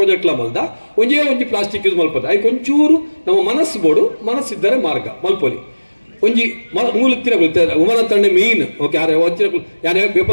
ಪ್ರಾಜೆಕ್ಟ್ಲ ಮಲ್ದ ಒಂಜೇ ಪ್ಲಾಸ್ಟಿಕ್ ಯೂಸ್ ಮಲ್ಪದ ಐಕ್ ಒಂಚೂರು ನಮ್ಮ ಮನಸ್ಸು ಬೋಡು ಮನಸ್ಸಿದ್ದರೆ ಮಾರ್ಗ ಮಲ್ಪೊಲಿ ಒಂಜಿ ಮೂಲತ್ತಿನ ಉಮನ ತಂಡ ಮೀನ್ ಓಕೆ ಯಾರೇ ಯಾರೇ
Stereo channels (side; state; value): both; inverted; correlation -1.00